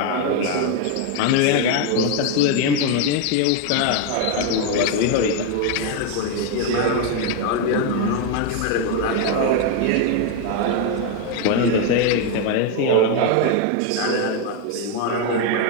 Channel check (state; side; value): different; both; correlation 0.01